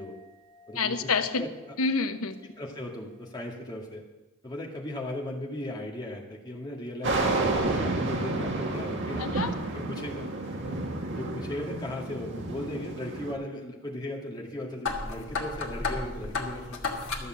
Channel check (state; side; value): normal; both; correlation 0.24